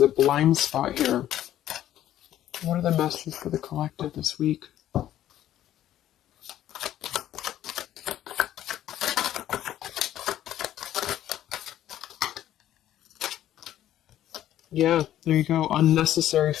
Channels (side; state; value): right; quieter; 12.3 dB